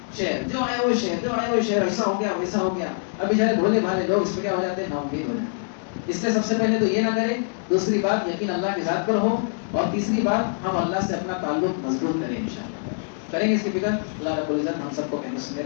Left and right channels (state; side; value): silent; right; digital silence